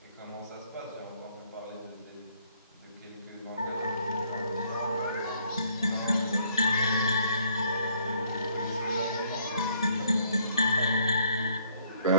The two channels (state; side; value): inverted; both; correlation -0.66